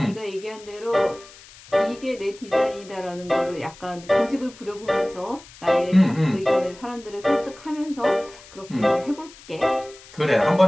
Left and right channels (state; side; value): noise; left; hiss, 21 dB below the sound